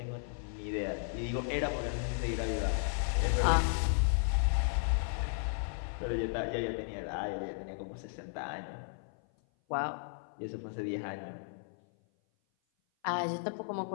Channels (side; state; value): right; silent; 55 dB below the other